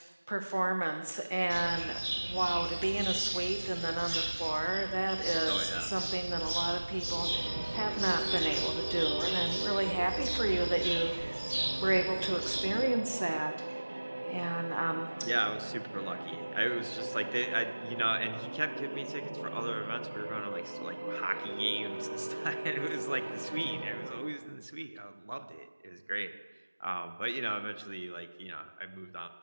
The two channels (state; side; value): inverted; both; correlation -1.00